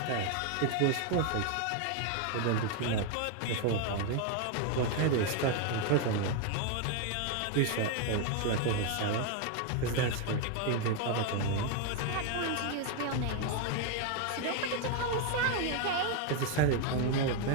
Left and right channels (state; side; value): different; both; correlation 0.01